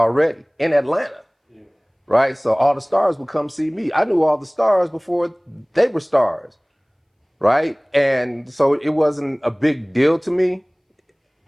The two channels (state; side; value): identical; both; correlation 1.00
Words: in Atlanta, right? So all the stars would come see me. I knew all the stars before they were stars, right? And so it wasn't a big deal to me,